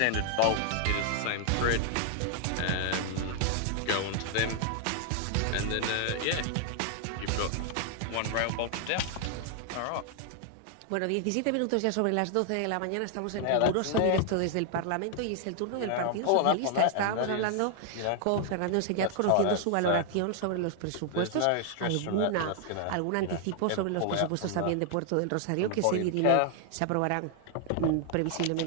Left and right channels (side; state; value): both; different; correlation 0.00